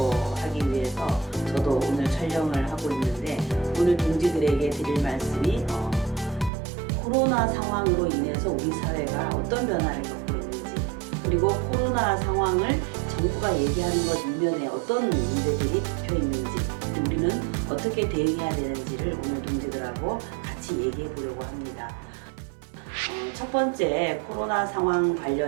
하기 위해서 저도 오늘 촬영을 하고 있는데, 오늘 동지들에게 드릴 말씀이 코로나 상황으로 인해서 우리 사회가 어떤 변화를 겪고 있는지, 그리고 코로나 상황을 정부가 얘기하는 것 이면에 어떤 문제들이 덮여 있는지, 우리는 어떻게 대응해야 되는지를 오늘 동지들하고 같이 얘기해 보려고 합니다. 첫 번째, 코로나 상황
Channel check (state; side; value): drops out; left; at 6.5 s